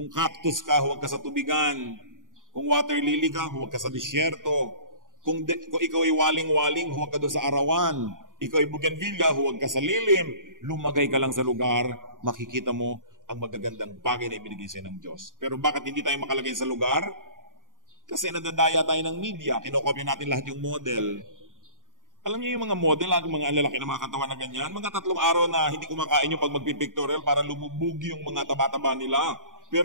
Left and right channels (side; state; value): left; late; 0.89 ms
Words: cactus ka, huwag ka sa tubigan. Kung water lily ka, huwag ka sa disyerto. Kung ikaw ay waling-waling, huwag ka doon sa arawan. Ikaw ay bougainvillea, huwag ka sa lilim. Lumagay ka lang sa lugar, makikita mo ang magagandang bagay na ibinigay sa ng Diyos. Pero bakit hindi tayo makalagay sa lugar? Kasi nadadaya tayo ng media. Kinokopya natin lahat yung model. Alam niyo yung mga model, mga lalaki na mga katawan na ganyan, mga 3 araw na hindi kumakain yung pag magpipictorial para lumubog yung mga taba-taba nila.